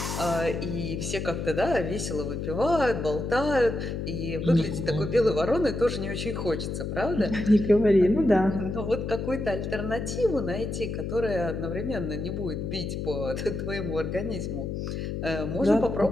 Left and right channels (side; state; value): left; noise; hum, 4 dB below the sound